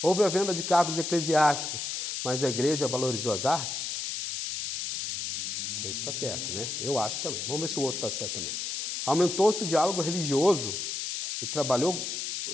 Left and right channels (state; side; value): noise; left; hiss, 3 dB below the sound